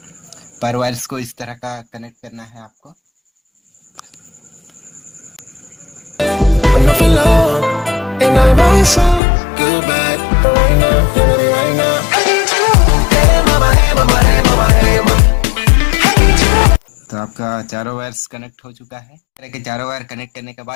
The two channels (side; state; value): right; drops out; at 9.2 s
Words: पर वायर्स को इस तरह का कनेक्ट करना है आपको। When I feel love, and I want some good bad, but right now, right now. Hey mama, hey mama, hey mama. चारों वायर्स कनेक्ट हो चुका है। इस तरह के चारों वायर कनेक्ट करने के